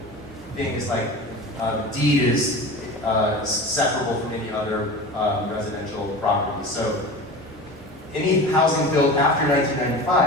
thing is like deed is separable from any other residential property. So any housing built after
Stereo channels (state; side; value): normal; both; correlation 0.32